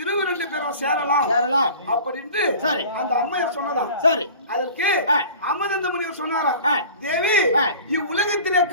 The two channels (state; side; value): inverted; both; correlation -0.42